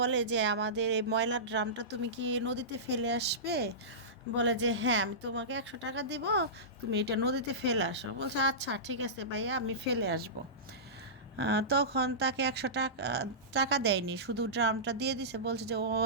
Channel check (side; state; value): both; normal; correlation -0.19